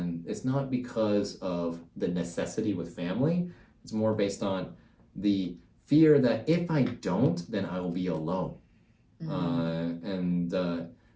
it's not because of the necessity with family. It's more based on the fear that if I don't, then I will be alone.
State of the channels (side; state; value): both; identical; correlation 1.00